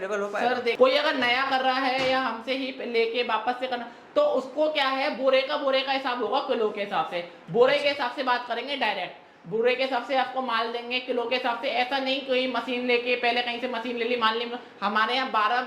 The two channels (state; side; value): identical; both; correlation 1.00